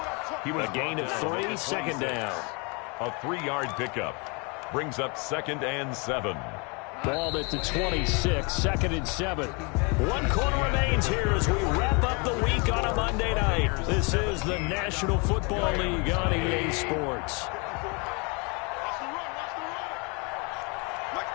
A gain of 3, 2nd down. A 3-yard pickup. Brings up 2nd and 7. Ball at the 26, 2nd and 7. 1 quarter remains here as we wrap up the week on a Monday night. This is the National Football League on EA Sports.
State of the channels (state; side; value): quieter; right; 31.8 dB